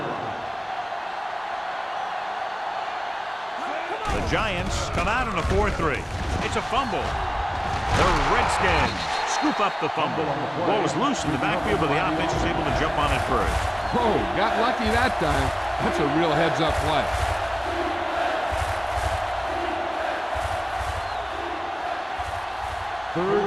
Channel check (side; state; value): both; identical; correlation 1.00